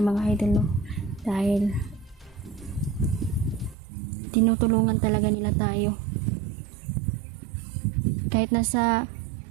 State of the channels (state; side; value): drops out; left; at 3.8 s